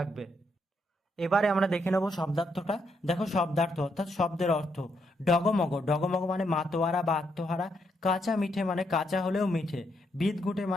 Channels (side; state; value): both; normal; correlation 0.77